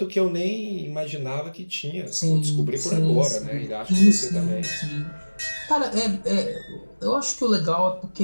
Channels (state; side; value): inverted; both; correlation -1.00